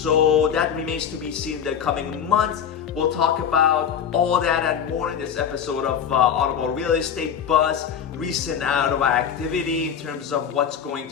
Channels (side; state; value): right; quieter; 8.1 dB